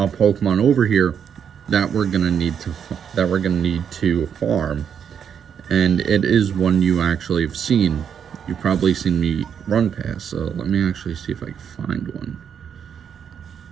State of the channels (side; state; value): left; quieter; 7.9 dB